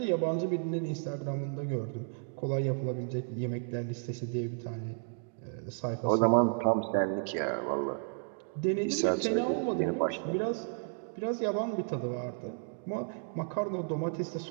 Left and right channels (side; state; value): left; silent; 56 dB below the other